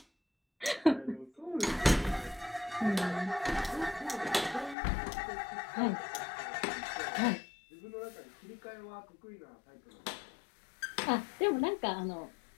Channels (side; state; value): right; drops out; at 4.8 s